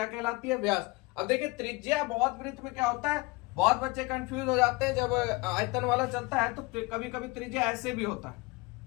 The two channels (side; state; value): right; quieter; 24.8 dB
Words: कहलाती है? व्यास। अब देखिए, त्रिज्या बहुत वृत्त में क्या होता है, बहुत बच्चे कंफ्यूज हो जाते हैं जब आयतन वाला चलता है, तो कभी कभी त्रिज्या ऐसे भी होता है।